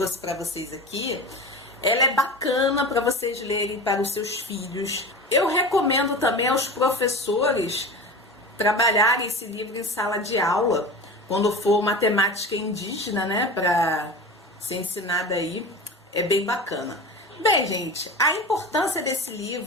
para vocês aqui, ela é bacana para vocês lerem para os seus filhos. Eu recomendo também aos professores trabalharem esse livro em sala de aula, quando for uma temática indígena, né, para ser ensinada aí, é bem bacana. Bem, gente, a importância desse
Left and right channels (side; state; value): both; normal; correlation 0.30